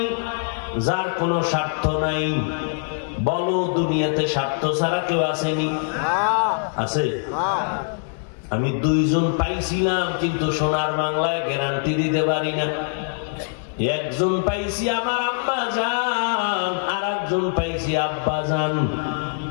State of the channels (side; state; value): right; silent; digital silence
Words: যার কোনো স্বার্থ নাই। বলো দুনিয়াতে স্বার্থ ছাড়া কেউ আসেনি? আছে? আমি 2 জন পাইছিলাম, কিন্তু সোনার বাংলায় গ্যারান্টি দিতে পারি না। একজন পাইছি আমার আম্মা জান, আর একজন পাইছি আব্বা জান,